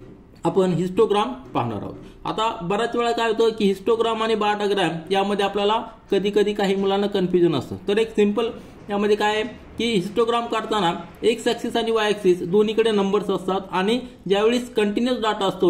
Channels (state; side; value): identical; both; correlation 1.00